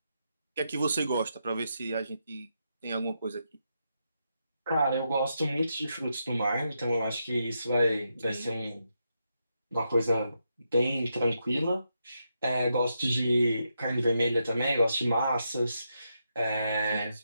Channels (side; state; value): both; inverted; correlation -0.83